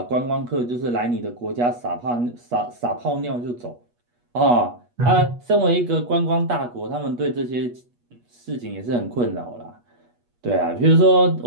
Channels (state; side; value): late; left; 8.3 ms